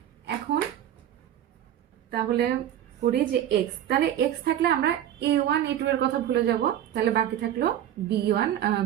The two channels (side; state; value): left; quieter; 11.2 dB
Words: এখন তাহলে করি যে x, তাহলে x থাকলে আমরা A1 A2 এর কথা ভুলে যাব। তাহলে বাকি থাকলো B1